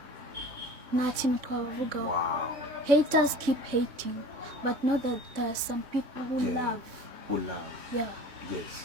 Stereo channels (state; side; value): late; left; 3.6 ms